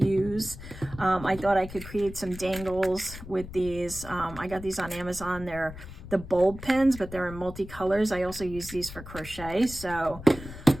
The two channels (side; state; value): left; noise; rumble, 13 dB below the sound